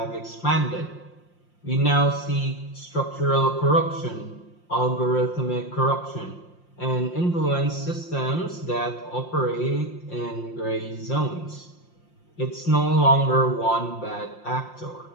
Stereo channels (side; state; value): right; late; 5.7 ms